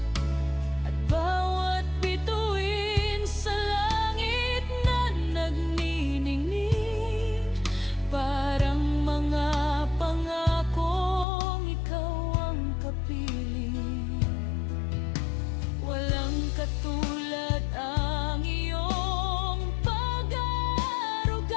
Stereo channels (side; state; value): right; drops out; at 11.2 s